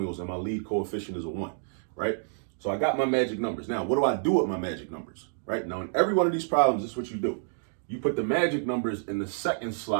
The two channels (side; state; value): left; silent; digital silence